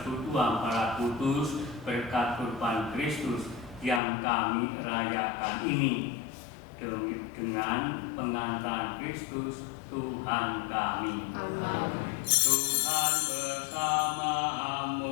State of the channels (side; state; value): right; drops out; at 4.0 s